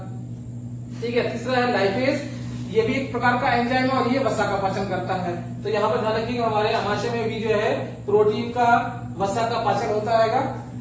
ठीक है। तीसरा है लाइपेज, ये भी एक प्रकार का एंजाइम है और ये वसा का पाचन करता है। तो यहाँ पर ध्यान रखिएगा हमारे आमाशय में भी जो है प्रोटीन का, वसा का पाचन होता है।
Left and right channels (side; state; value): both; identical; correlation 1.00